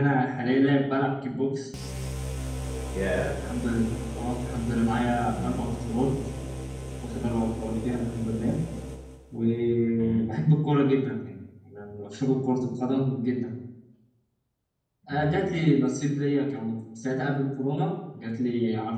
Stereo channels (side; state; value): both; identical; correlation 1.00